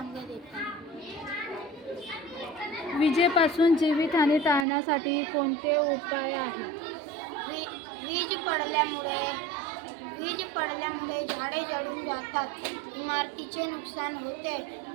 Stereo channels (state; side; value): drops out; left; at 4.7 s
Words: देतात. विजेपासून जीवितहानी टाळण्यासाठी कोणते उपाय आहेत? वीज पडल्यामुळे झाडे जळून जातात. इमारतीचे नुकसान होते.